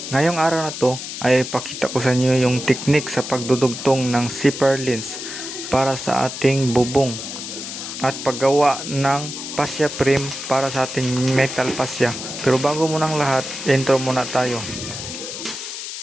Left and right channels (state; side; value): noise; left; hiss, 8 dB below the sound